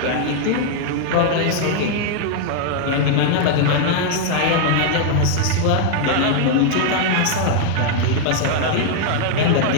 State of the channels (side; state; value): both; different; correlation 0.00